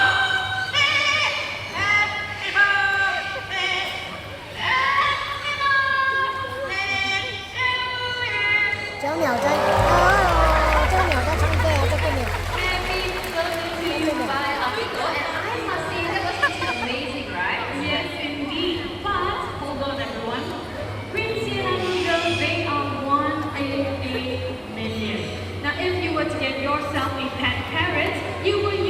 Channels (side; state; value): both; identical; correlation 1.00